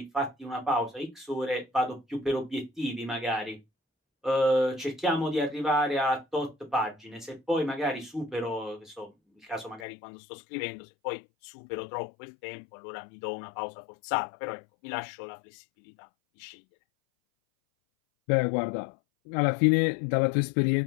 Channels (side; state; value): right; drops out; at 9.9 s